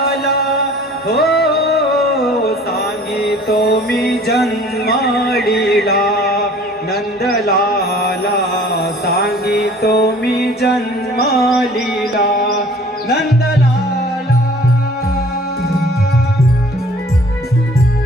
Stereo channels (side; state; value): both; normal; correlation 0.50